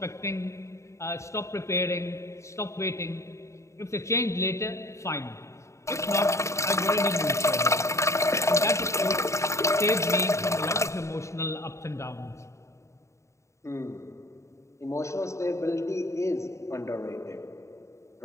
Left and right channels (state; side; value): late; right; 0.14 ms